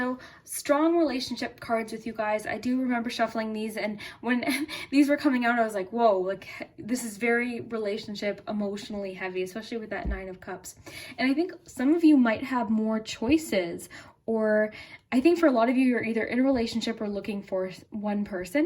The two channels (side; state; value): both; identical; correlation 1.00